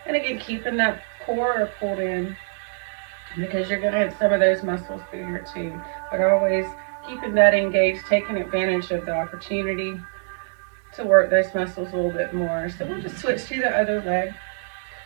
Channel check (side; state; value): left; silent; 63 dB below the other